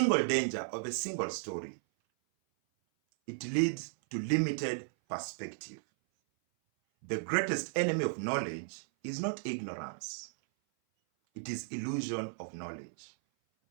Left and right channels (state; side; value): silent; left; 55 dB below the other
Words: danger of a single story. It leads to limited perspective. The greatest enemy of knowledge is not ignorance. It is illusion of knowledge.